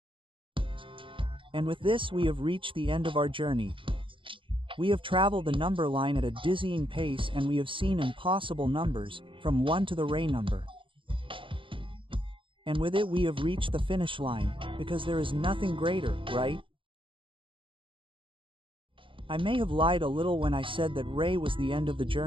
And with this we have reached the end of our journey. We have traveled the number line at a dizzying pace and we have seen impossible numbers, from 1 to the ray number. And with it we have reached the finish line, because there is nothing greater, right? I may have lied a little when I said that ray was the end of the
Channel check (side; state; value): left; late; 0.25 ms